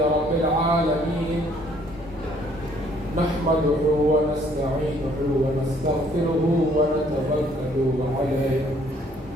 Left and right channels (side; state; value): both; normal; correlation 0.63